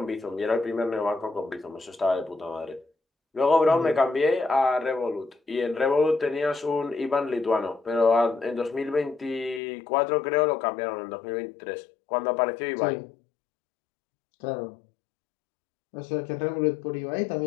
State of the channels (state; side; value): drops out; right; at 9.6 s